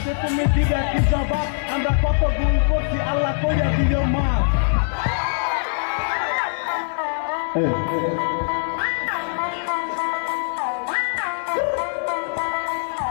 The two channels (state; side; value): silent; right; digital silence